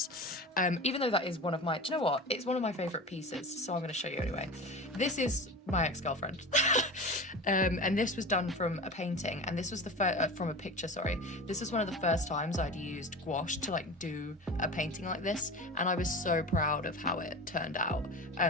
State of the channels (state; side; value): normal; both; correlation 0.31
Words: Even though that is one of my, do you know what? It's one of my favourite pieces, so I'm going to show you anyway. This is my ex-girlfriend. And this was done from a painting, and this was the from a picture, sorry. This was one of the first times I'd used gouache to like do a painting like this, and I was so proud of how it turned out.